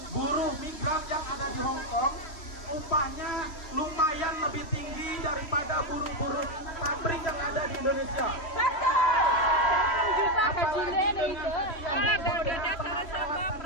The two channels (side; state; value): right; late; 3.1 ms